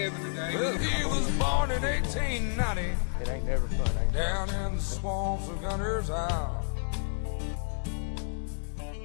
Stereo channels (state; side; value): silent; right; digital silence